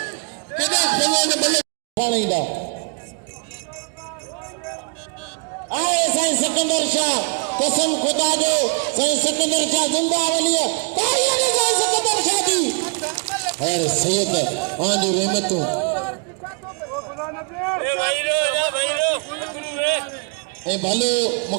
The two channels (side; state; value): left; quieter; 34.1 dB